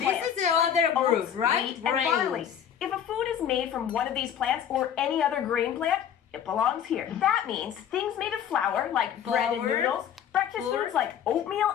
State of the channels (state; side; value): quieter; right; 9.2 dB